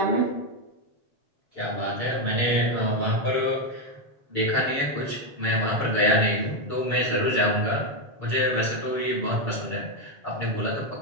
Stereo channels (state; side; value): late; right; 6.9 ms